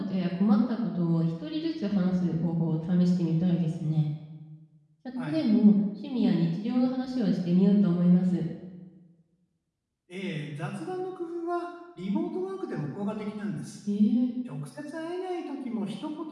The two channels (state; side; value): identical; both; correlation 1.00